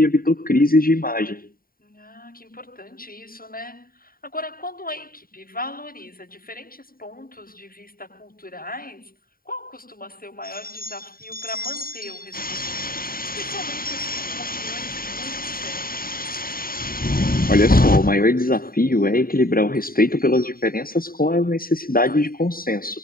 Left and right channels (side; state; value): right; late; 0.42 ms